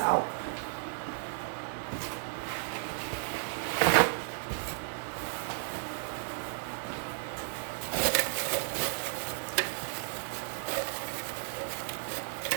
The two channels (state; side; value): silent; left; digital silence